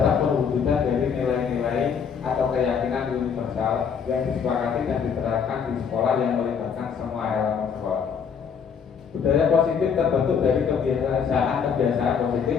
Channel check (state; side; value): quieter; right; 6.8 dB